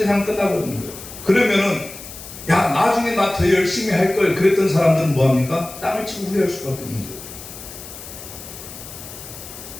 끝나버리는 거예요. 그러면은 야, 나중에 나 더 열심히 할 걸 그랬던 사람들은 뭐합니까? 땅을 치고 후회할 수밖에 없는 거예요.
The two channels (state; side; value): noise; left; hiss, 14 dB below the sound